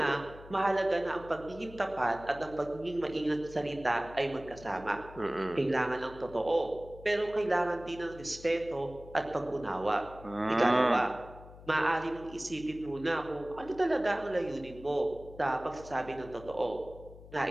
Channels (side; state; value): left; noise; hum, 18 dB below the sound